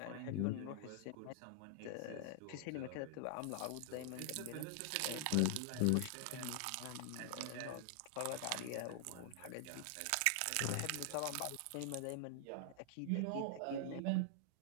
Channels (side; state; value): both; different; correlation -0.01